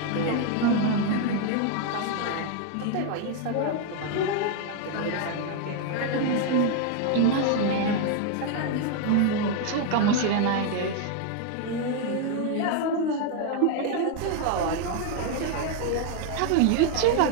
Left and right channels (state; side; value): different; both; correlation 0.01